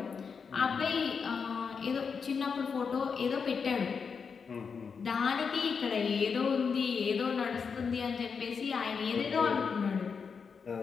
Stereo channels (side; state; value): right; quieter; 5.8 dB